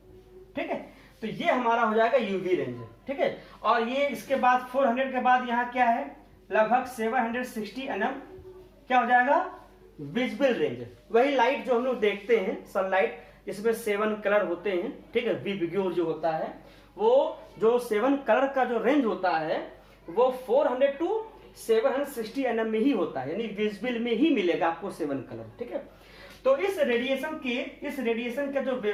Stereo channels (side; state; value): both; identical; correlation 1.00